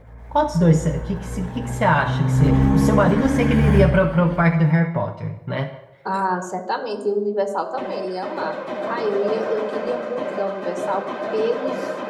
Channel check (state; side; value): identical; both; correlation 1.00